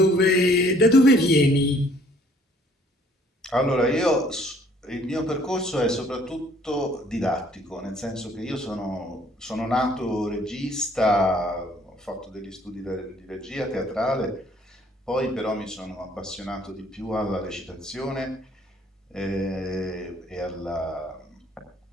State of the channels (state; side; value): normal; both; correlation 0.60